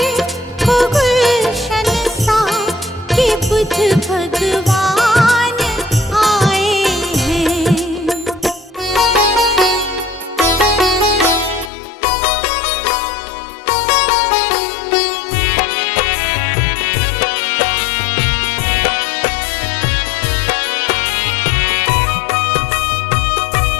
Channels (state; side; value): drops out; right; at 11.7 s